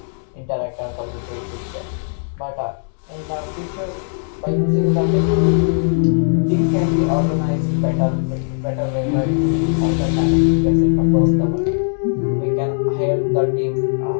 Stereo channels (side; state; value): right; silent; digital silence